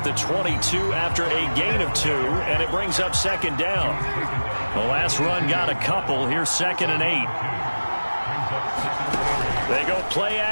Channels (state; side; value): inverted; both; correlation -1.00